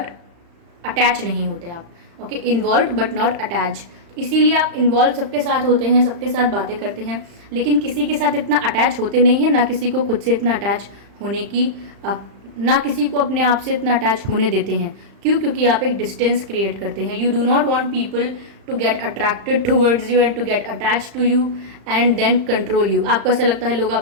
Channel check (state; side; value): late; left; 35 ms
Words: अटैच नहीं होते आप। Okay, involve but not attach. इसीलिए आप इन्वॉल्व सबके साथ होते हैं, सबके साथ बातें करते हैं, लेकिन किसी के साथ इतना अटैच होते नहीं हैं, ना किसी को खुद से इतना अटैच होने की, ना किसी को अपने आप से इतना अटैच होने देते हैं। क्यों? क्योंकि आप एक डिस्टेंस क्रिएट करते हैं। You do not want people to get attracted towards you and to get attach to you and then control you. आपको ऐसा लगता है लोग